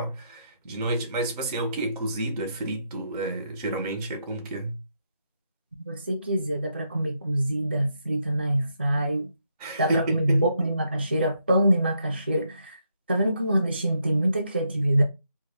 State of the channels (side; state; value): both; inverted; correlation -0.79